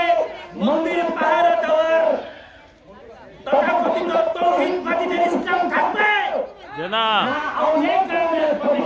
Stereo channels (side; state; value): both; identical; correlation 1.00